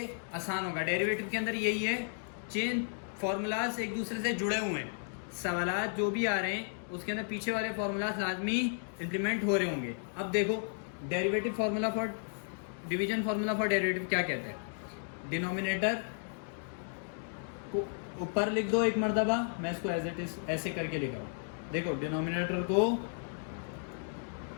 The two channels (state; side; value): silent; right; digital silence